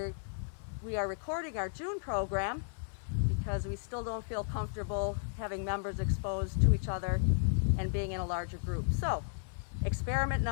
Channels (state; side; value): silent; right; 55 dB below the other